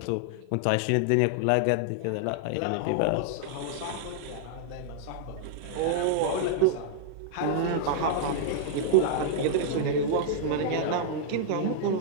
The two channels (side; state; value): both; different; correlation -0.01